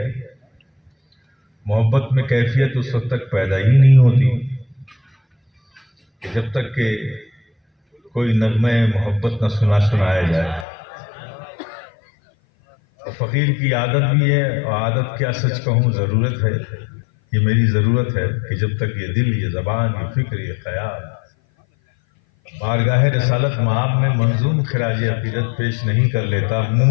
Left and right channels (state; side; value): drops out; right; at 10.7 s